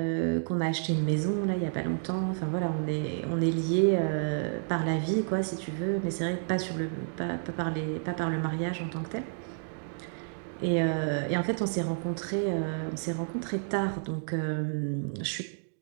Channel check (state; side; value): silent; left; digital silence